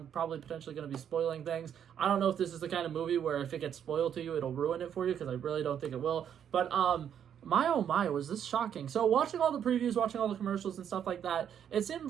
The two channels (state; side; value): quieter; left; 8.9 dB